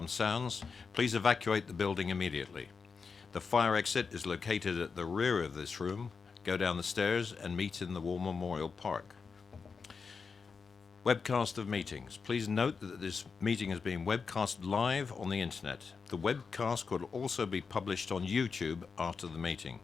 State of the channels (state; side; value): quieter; right; 5.3 dB